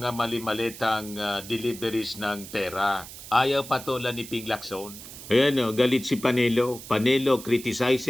mali-malitang deliveries ng pera. Ayaw patulan ni Ping Lacson. Ayan o, galit si Panelo. Panelo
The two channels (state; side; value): noise; right; hiss, 14 dB below the sound